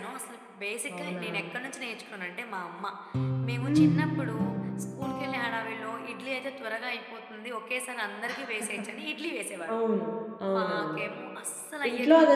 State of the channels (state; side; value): identical; both; correlation 1.00